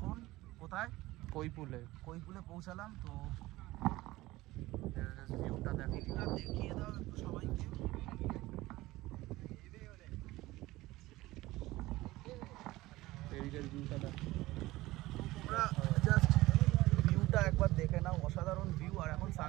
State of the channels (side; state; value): left; quieter; 18.4 dB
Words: কোথায়? কৈপুলে। কৈপুলে পৌঁছালাম। তো ভিউটা দেখিয়ে দাও একটু সবাইকে। এদিকের ভিউটা দেখো। তোমরা জাস্ট ভিউটা একবার দেখে নাও, অসাধারণ ভিউ। আর এখন